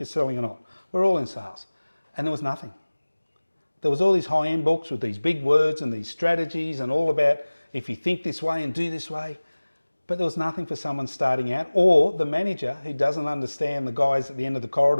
selling or not. We're all in sales. And there was nothing. There was all these high-end books with these big words and these strategies and all about if you think this way and do this way. But there was nothing for someone starting out, or the manager who doesn't understand the guys at the end of the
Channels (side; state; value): both; inverted; correlation -1.00